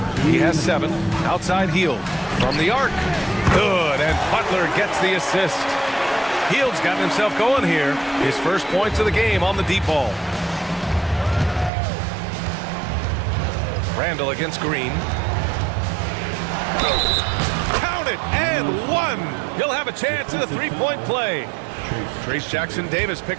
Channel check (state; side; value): drops out; left; at 11.7 s